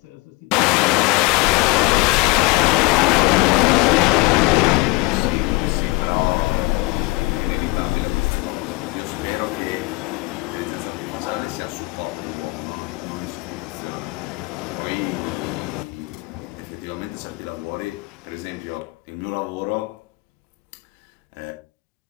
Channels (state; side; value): quieter; right; 23.1 dB